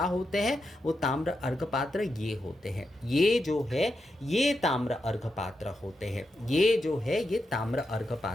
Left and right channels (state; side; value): normal; both; correlation 0.86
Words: होते हैं, वो ताम्र अर्घ पात्र ये होते हैं, ये जो है ये ताम्र अर्घ पात्र होते हैं, ये जो है ये ताम्र अर्घ